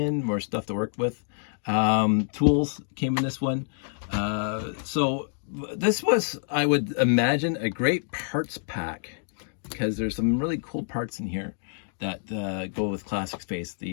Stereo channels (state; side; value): silent; right; digital silence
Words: more stuff to work with. Tools came in this one. So this was, I would imagine, a great parts pack, because there's some really cool parts in here that go with classic space.